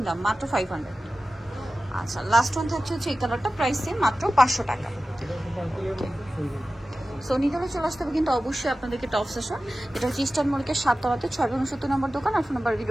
দাম, মাত্র 500। আচ্ছা, লাস্ট ওয়ান থাকছে হচ্ছে এই কালারটা, প্রাইস সেম, মাত্র 500 টাকা। সো নিতে হলে চলে আসতে হবে কিন্তু অবশ্যই আপনাদেরকে টপ সেশন। এটা হচ্ছে ইস্টার্ন মল্লিকের 7 তলাতে 670 নম্বর দোকান। আর ফোন নাম্বার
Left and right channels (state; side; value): normal; both; correlation 0.95